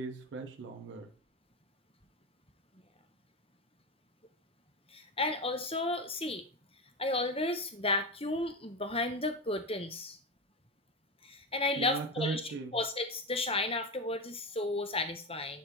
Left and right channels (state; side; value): normal; both; correlation 0.18